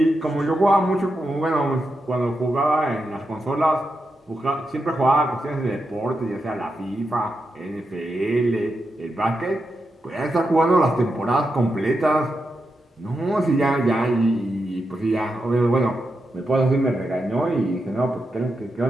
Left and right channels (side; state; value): both; normal; correlation 0.86